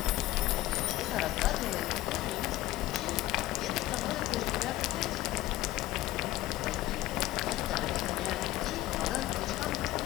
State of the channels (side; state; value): right; quieter; 16.3 dB